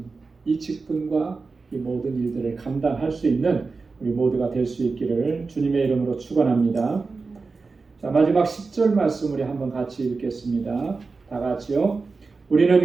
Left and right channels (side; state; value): left; quieter; 4.2 dB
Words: 이 직분과 이 모든 일들을 감당할 수 있는 우리 모두가 될 수 있기를 주님의 이름으로 축원합니다. 자, 마지막 10절 말씀 우리 한번 같이 읽겠습니다. 다 같이요.